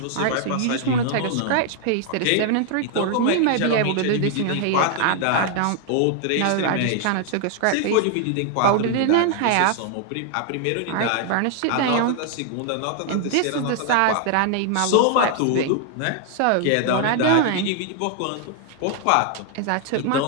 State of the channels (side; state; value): both; different; correlation 0.00